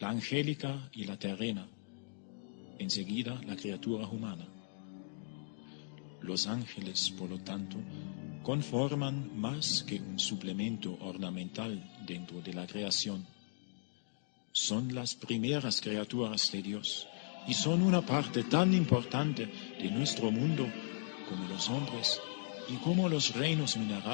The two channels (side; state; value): right; silent; digital silence